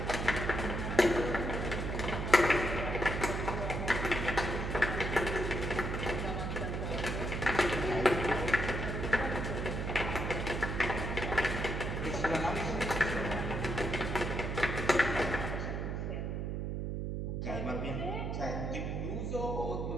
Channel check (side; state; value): right; noise; hum, 2 dB below the sound